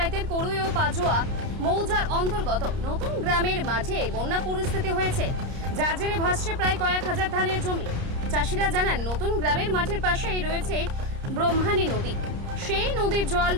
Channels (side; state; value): left; late; 30 ms